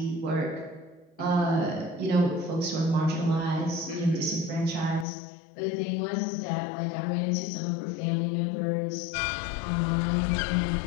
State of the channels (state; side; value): drops out; right; at 5.1 s